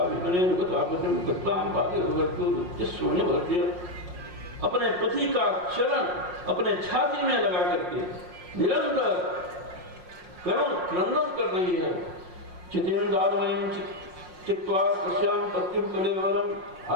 विपणेन गतापतिम गताम बाधे सोने भरते अपने पति का चरण अपने छाती में लगा करके निरंतर करुण क्रंदन कर रही है। चितेन्द्रावयं चित्वा तस्यां पत्युं कलेवरम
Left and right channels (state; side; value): late; left; 5.6 ms